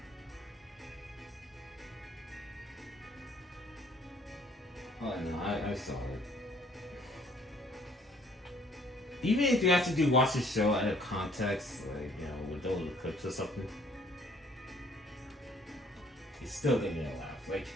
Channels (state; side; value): normal; both; correlation 0.60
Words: no. saw it. Even if you actually do watch the show out of context, like, you know, with those clips or something, it's still gonna get a laugh. Like,